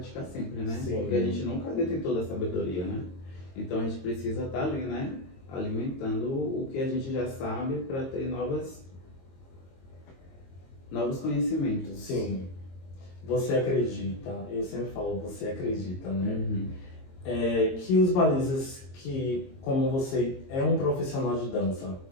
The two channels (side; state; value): right; late; 22 ms